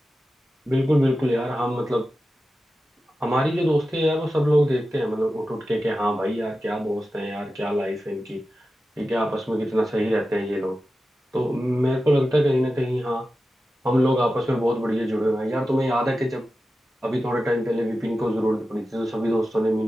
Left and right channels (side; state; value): both; normal; correlation 0.93